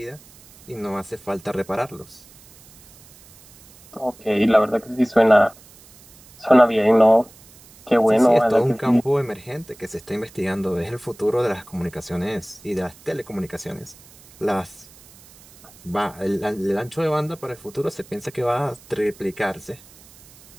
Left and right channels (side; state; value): right; noise; hiss, 24 dB below the sound